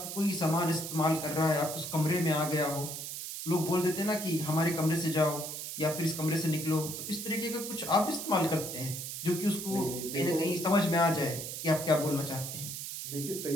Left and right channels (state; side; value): noise; right; hiss, 6 dB below the sound